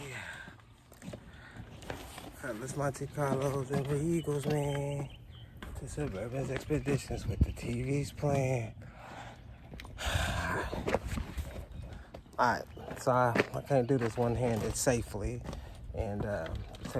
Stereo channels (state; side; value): identical; both; correlation 1.00